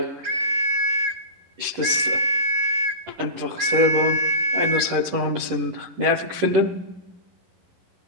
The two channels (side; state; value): left; late; 11 ms